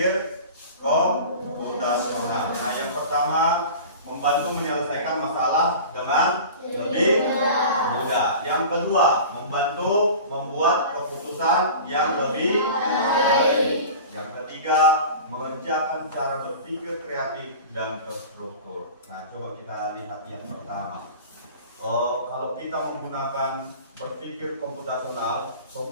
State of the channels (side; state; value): both; inverted; correlation -0.37